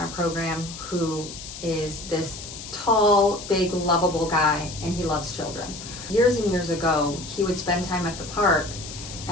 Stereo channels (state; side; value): noise; left; hiss, 12 dB below the sound